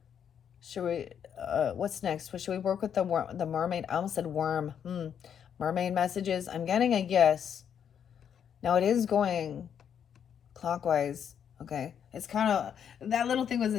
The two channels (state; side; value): quieter; right; 8.4 dB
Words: Should we, what's next? Should we work with the mermaid? I almost said worm. Mermaid messages. I'm getting a yes. Now it is going clockwise. Okay. It's kind of, that little thing was